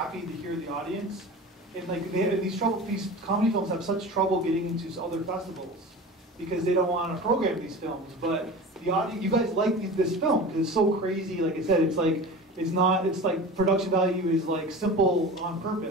to hear the audience, and like these comedy films have such trouble getting into other festivals because they don't want to program these films. But the audience, you guys like this film because it's so crazy. Like I said, it's like production value is like simple on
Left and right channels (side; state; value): both; normal; correlation 0.34